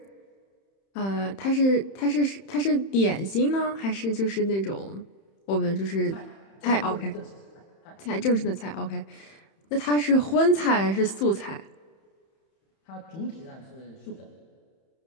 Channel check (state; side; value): late; right; 31 ms